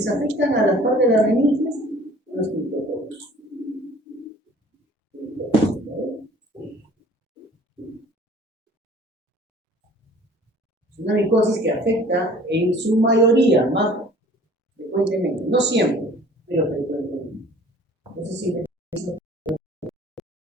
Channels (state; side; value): normal; both; correlation 0.50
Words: afectan a las partes de las meninges son los criptococcus. Es una micosis que afecta en su mayoría, más frecuentemente, no siempre, pero frecuentemente. Entonces, siempre.